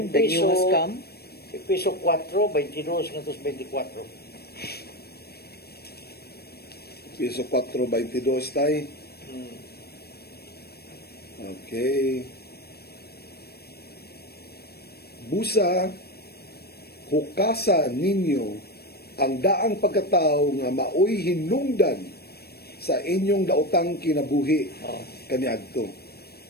the new has come Piso 4 22 ngantos 24 Piso 4.22 tay. Okay. Busa, hukasa ninyo ang daang pagkatao nga maoy hinungdan sa inyong daotang kinabuhi kaniadto.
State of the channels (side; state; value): right; late; 0.46 ms